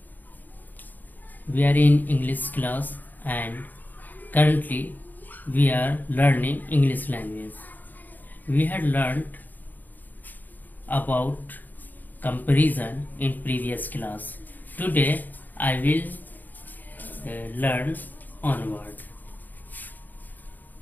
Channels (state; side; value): late; right; 0.085 ms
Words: We are in English class and currently we are learning English language. We had learned about comparison in previous class. Today I will learn onward.